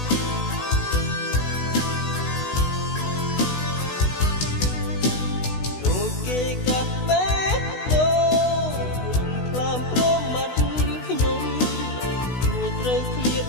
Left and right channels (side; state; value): right; late; 16 ms